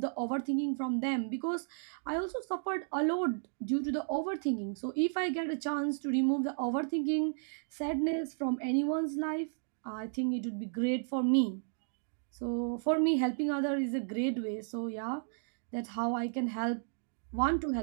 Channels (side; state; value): left; silent; digital silence